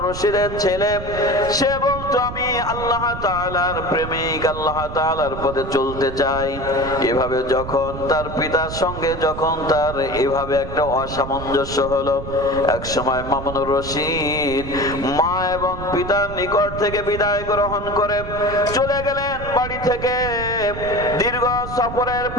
রশিদের ছেলে, সে বলতো, আমি আল্লাহ তাআলার প্রেমিক, আল্লাহ তাআলার পথে চলতে চাই। এভাবে যখন তার পিতার সঙ্গে যখন তার এভাবে একটা অসামঞ্জস্য হলো, এক সময় মামুনুর রশিদ মা এবং পিতার নিকট থেকে বিদায় গ্রহণ করে চলে গেলেন বাড়ি থেকে। দীর্ঘ সফরের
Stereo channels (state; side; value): noise; right; rumble, 9 dB below the sound